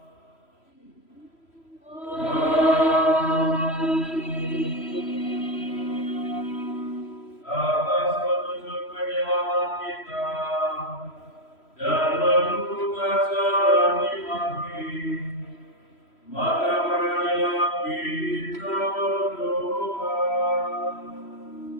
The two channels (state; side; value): late; right; 3.1 ms